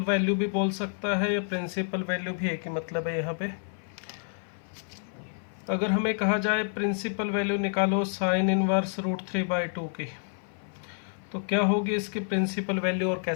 वैल्यू भी बोल सकता है या प्रिंसिपल वैल्यू भी एक ही मतलब है यहाँ पे। अगर हमें कहा जाए प्रिंसिपल वैल्यू निकालो साइन इनवर्स √3/2 की, तो क्या होगी इसकी प्रिंसिपल वैल्यू और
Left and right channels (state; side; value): silent; right; 56 dB below the other